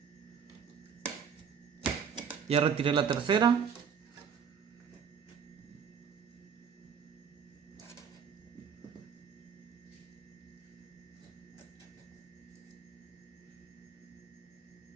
Ya retiré la tercera.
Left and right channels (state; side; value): quieter; left; 6.9 dB